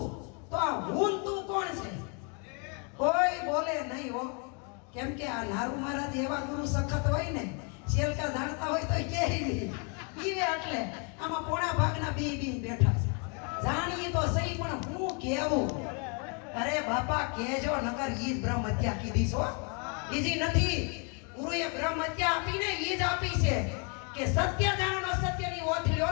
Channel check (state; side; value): quieter; right; 36.4 dB